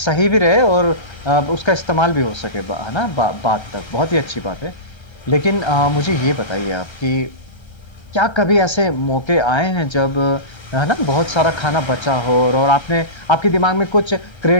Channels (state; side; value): late; right; 1.3 ms